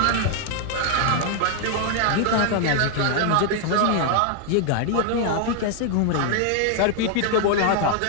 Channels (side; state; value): both; different; correlation 0.00